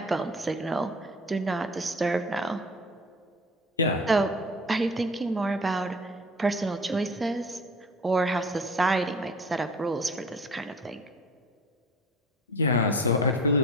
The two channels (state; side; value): normal; both; correlation 0.42